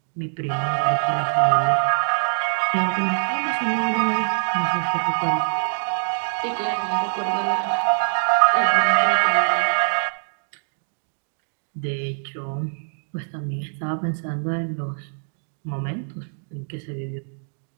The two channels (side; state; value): left; silent; digital silence